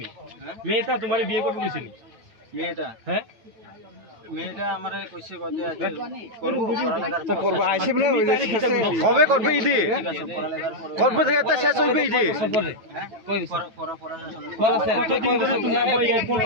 মেয়েটা তোমারে বিয়ে করব কইছিনি মেয়েটা হ্যাঁ মেয়েটা আমারে কইছে কতে আছে করব পড়ালেখার তো করব আইছে বলে কবে করবে ইদি করবে থেকে তো শেষ হইবে ইদি কতদিন ধরে তোমার এয়ারপোর্ট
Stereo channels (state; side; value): late; left; 9.1 ms